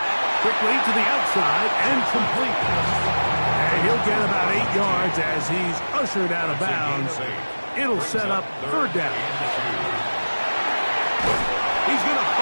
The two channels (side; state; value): both; inverted; correlation -1.00